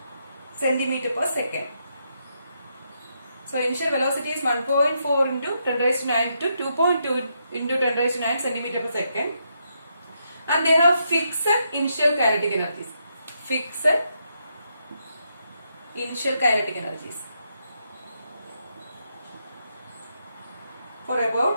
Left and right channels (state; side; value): inverted; both; correlation -0.79